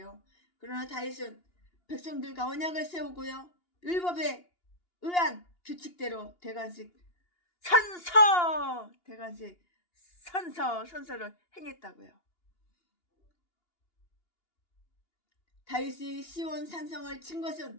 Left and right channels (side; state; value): right; late; 2.8 ms